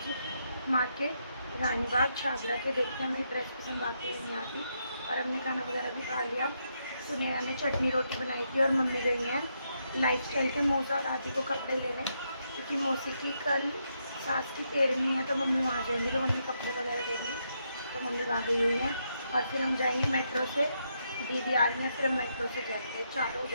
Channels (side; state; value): both; inverted; correlation -0.80